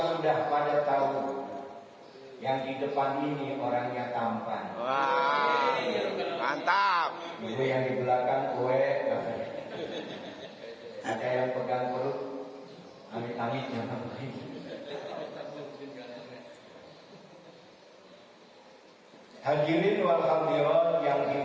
pada tahu yang di depan ini orangnya tampan. wah, mantap. Ibu yang di belakang kue, ada yang pegang perut, amit-amit jangan begitu. Hadirin wal hadirat yang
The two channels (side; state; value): both; identical; correlation 1.00